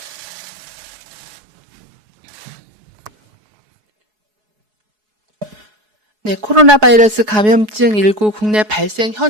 네, 코로나 바이러스 감염증 19 국내 발생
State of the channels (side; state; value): left; late; 4.7 ms